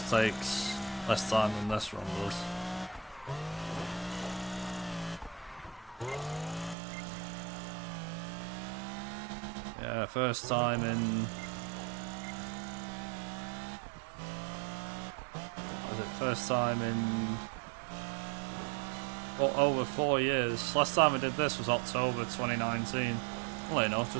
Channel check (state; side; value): drops out; left; at 6.8 s